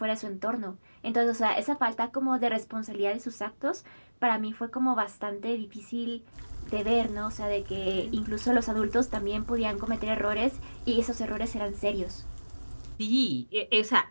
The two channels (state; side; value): inverted; both; correlation -1.00